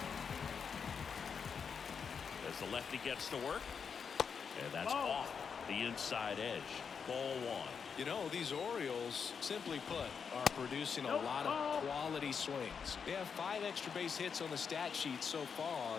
As the lefty gets to work. And that's off the inside edge. Ball one. You know, these Orioles, simply put, are producing a lot of quality swings. They have 5 extra base hits on the stat sheet so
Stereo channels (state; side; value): quieter; right; 6.4 dB